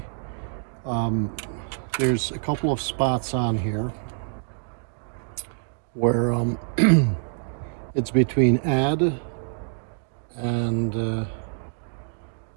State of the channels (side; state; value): left; silent; 56 dB below the other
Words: there's a couple of spots on here where it's between add and